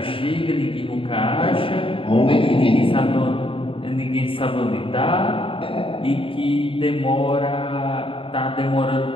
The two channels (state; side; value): late; right; 0.26 ms